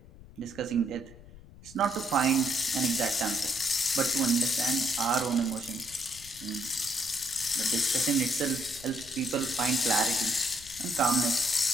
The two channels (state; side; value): noise; left; rumble, 20 dB below the sound